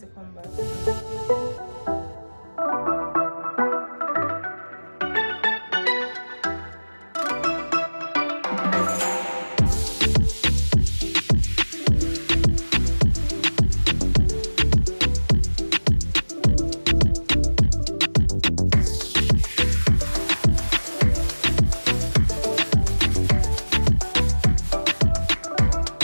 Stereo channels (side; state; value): both; inverted; correlation -1.00